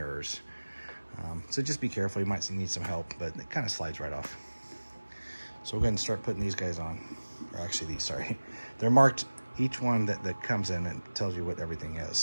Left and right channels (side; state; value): both; inverted; correlation -1.00